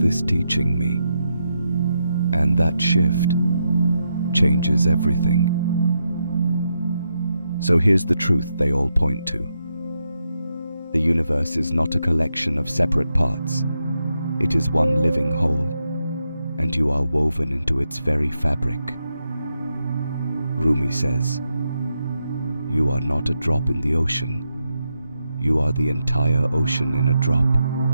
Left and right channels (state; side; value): inverted; both; correlation -0.84